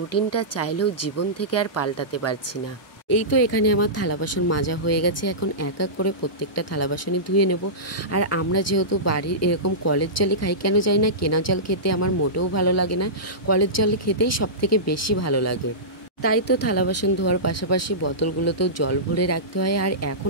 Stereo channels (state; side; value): normal; both; correlation -0.19